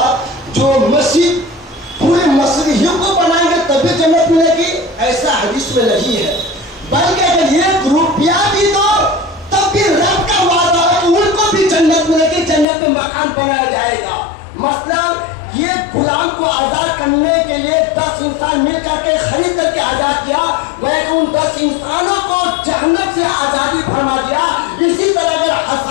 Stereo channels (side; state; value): right; drops out; at 12.7 s